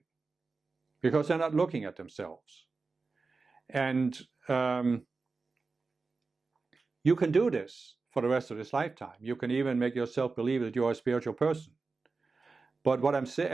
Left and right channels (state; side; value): quieter; left; 4.1 dB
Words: because they're not looking at themselves. And you can do this for the rest of this lifetime. You can even make yourself believe that you're a spiritual person. But what I'm